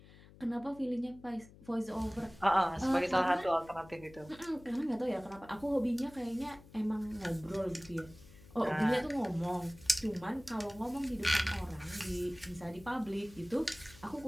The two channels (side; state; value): left; noise; hum, 21 dB below the sound